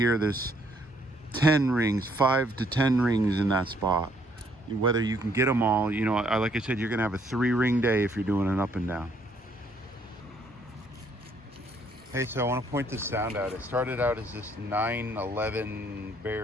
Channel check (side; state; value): both; normal; correlation 0.67